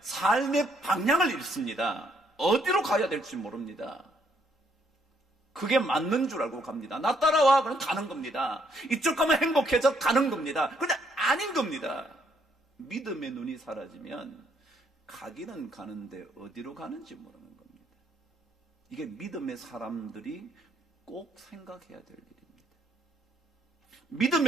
삶의 방향을 잃습니다. 어디로 가야 될지 모릅니다. 그게 맞는 줄 알고 갑니다. 나 따라와, 그럼 가는 겁니다. 이쪽 가면 행복해져, 가는 겁니다. 근데 아닌 겁니다. 믿음의 눈이 사라지면 가기는 가는데 어디로 가는지 모르는 겁니다. 이게 믿음의 사람들이 꼭 생각해야 될 일입니다.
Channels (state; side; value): normal; both; correlation 0.70